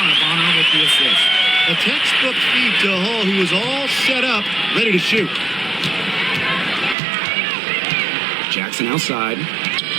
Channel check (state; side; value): drops out; left; at 7.0 s